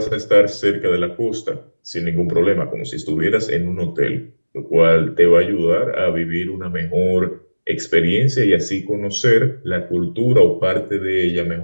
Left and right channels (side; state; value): both; inverted; correlation -1.00